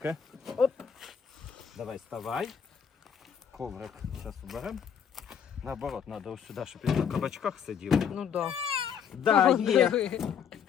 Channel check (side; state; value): right; quieter; 7.6 dB